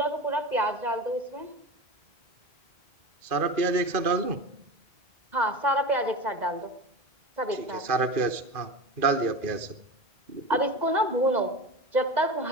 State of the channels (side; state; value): left; late; 2.4 ms